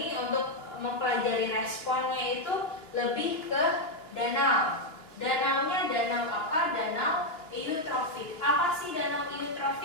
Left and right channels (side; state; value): right; late; 2.9 ms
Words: untuk mempelajari responnya itu lebih ke danau. Danaunya danau apa? Danau eutrofik. Apa sih danau